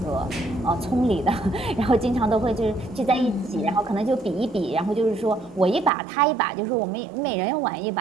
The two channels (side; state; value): left; drops out; at 5.9 s